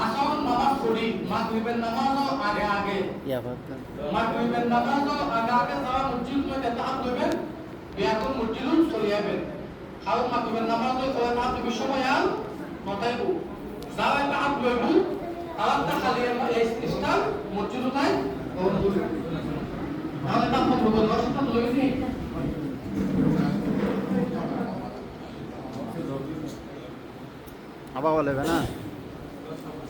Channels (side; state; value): both; identical; correlation 1.00